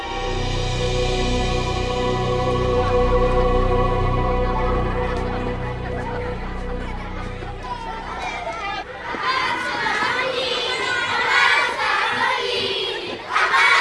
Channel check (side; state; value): both; identical; correlation 1.00